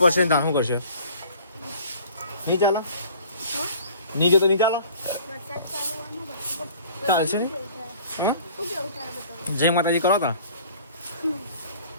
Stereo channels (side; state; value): both; inverted; correlation -0.50